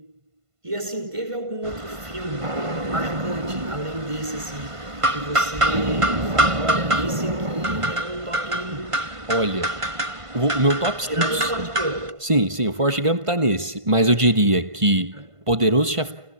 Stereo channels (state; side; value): late; left; 1.5 ms